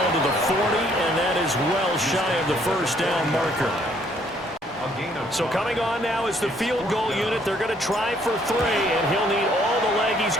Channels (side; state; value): both; normal; correlation 0.65